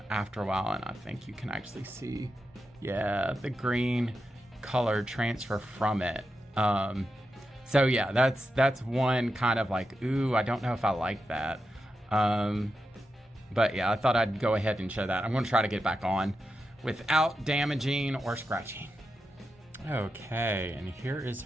a while. And I think you can actually see, yeah, the green color transfer from it. So yeah, that's one kind of like, ooh, I don't know if I like that. But yeah, I thought I'd go ahead and show that. I'm going to try to get back on without damaging or scratching. Okay, and here is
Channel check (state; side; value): normal; both; correlation 0.88